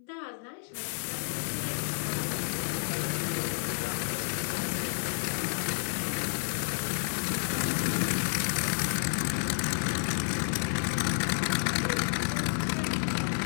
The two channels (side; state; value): right; silent; digital silence